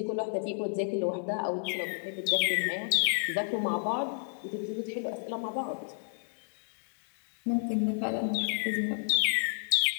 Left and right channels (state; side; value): silent; right; digital silence